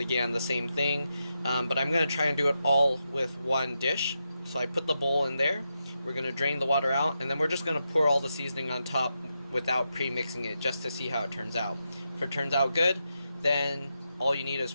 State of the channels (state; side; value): inverted; both; correlation -0.86